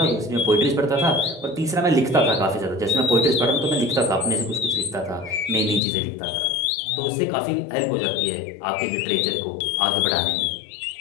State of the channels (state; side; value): drops out; right; at 5.8 s